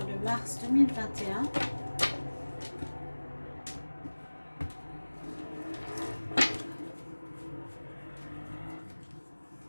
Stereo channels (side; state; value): both; inverted; correlation -1.00